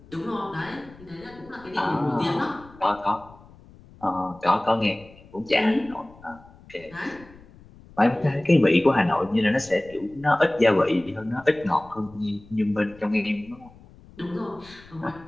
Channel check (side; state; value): left; noise; rumble, 23 dB below the sound